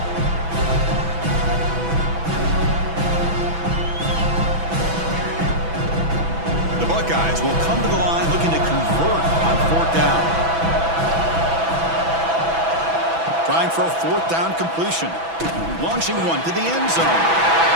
The Buckeyes will come to the line looking to convert on 4th down. Trying for a 4th down completion. Launching one to the end zone.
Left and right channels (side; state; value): left; late; 6.0 ms